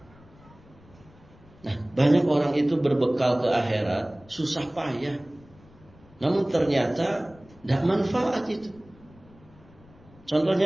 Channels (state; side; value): noise; left; rumble, 25 dB below the sound